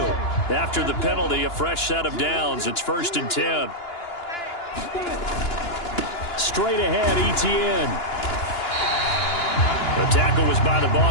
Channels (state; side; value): late; right; 2.9 ms